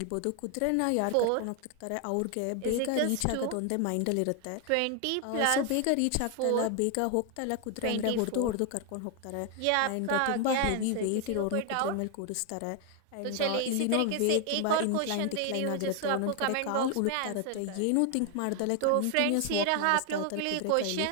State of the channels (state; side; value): different; both; correlation 0.01